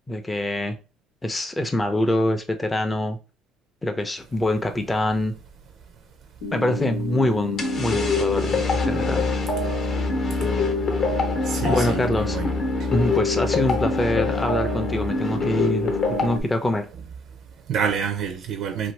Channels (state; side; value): normal; both; correlation 0.73